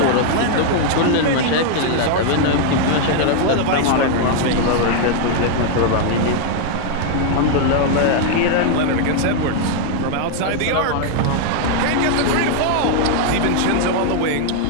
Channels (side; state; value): both; different; correlation 0.00